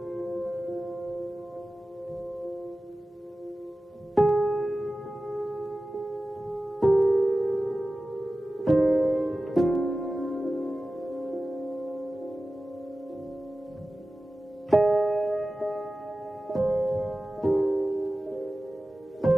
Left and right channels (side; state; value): both; normal; correlation 0.95